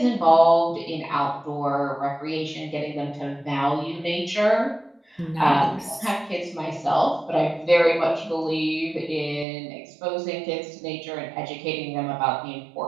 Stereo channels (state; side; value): drops out; left; at 9.5 s